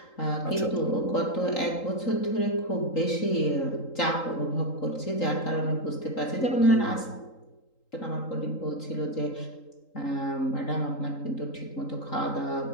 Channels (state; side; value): late; right; 3.8 ms